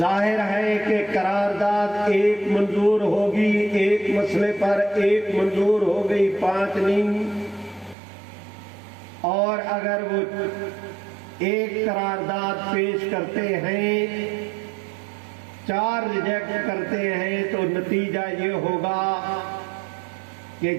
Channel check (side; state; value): left; drops out; at 8.0 s